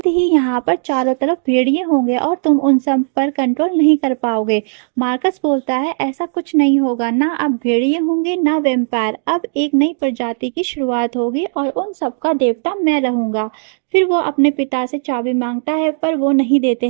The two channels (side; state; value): left; silent; digital silence